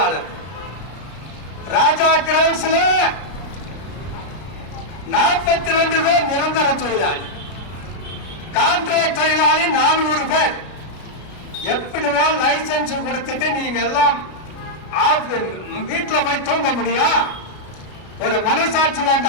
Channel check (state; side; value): late; right; 33 ms